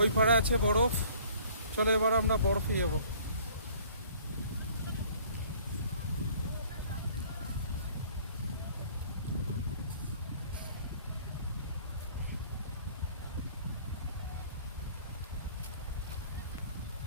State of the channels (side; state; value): both; inverted; correlation -0.55